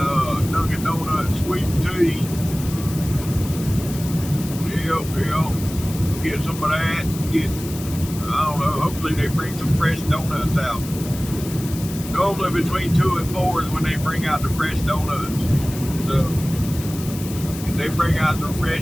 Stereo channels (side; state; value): left; noise; hiss, 13 dB below the sound